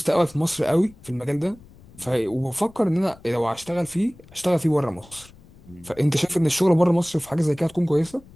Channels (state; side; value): noise; left; rumble, 24 dB below the sound